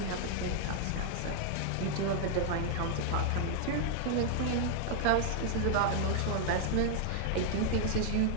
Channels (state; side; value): different; both; correlation 0.00